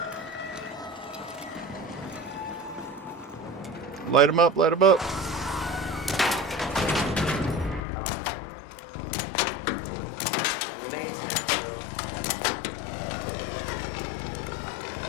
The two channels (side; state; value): right; drops out; at 7.9 s